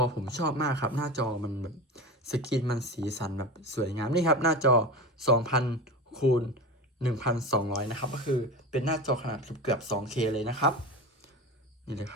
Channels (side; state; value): both; normal; correlation 0.26